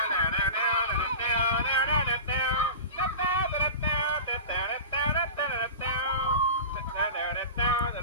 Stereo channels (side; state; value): both; inverted; correlation -0.32